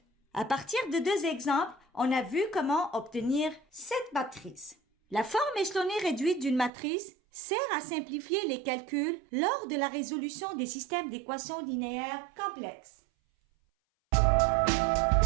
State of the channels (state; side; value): drops out; left; at 6.7 s